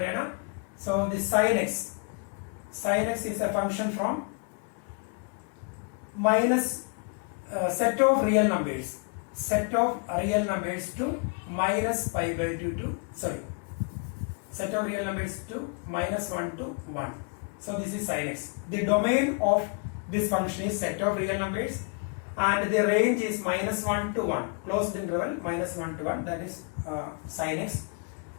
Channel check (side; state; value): right; quieter; 38.0 dB